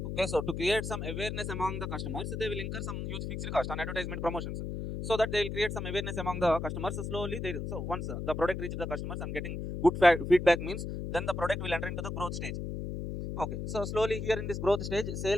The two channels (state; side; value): noise; left; hum, 4 dB below the sound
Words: Okay, so to create some awareness among the customers, they will incur some huge fixed cost on advertisement promotions, so that they will create some awareness among the customers. Slowly, they so once the product reaches the customers and getting good feedback means, then the product will enter into the growth stage. Okay, so slowly here in this growth stage,